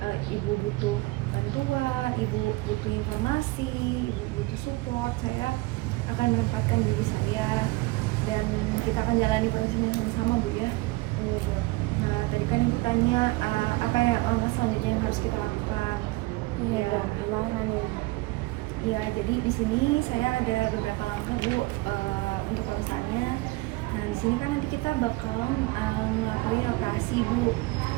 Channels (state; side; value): quieter; left; 22.1 dB